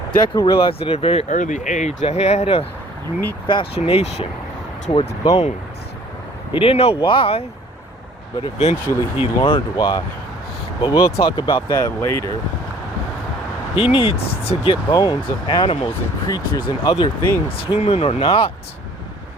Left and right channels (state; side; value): normal; both; correlation 0.54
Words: Deku realized at a very early age that he had a unique fascination towards bones. He didn't know why, but eventually he learned why. But we'll talk about that later. He needs to get bones of animals and creatures and other things, human or not,